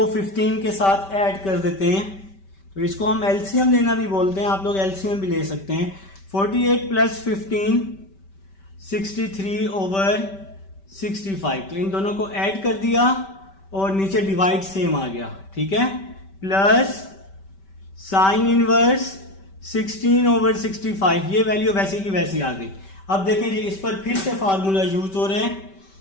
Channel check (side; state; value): right; late; 5.2 ms